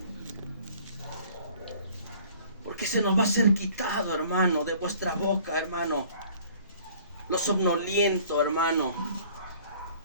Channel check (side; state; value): both; inverted; correlation -0.53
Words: Porque se nos va a ser quitado, hermano, de vuestra boca, hermano, lo somnoliento, hermano.